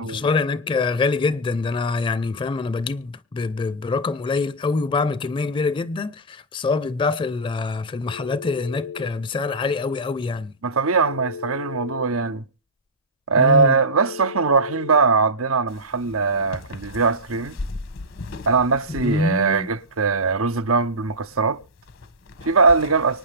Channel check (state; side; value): normal; both; correlation -0.12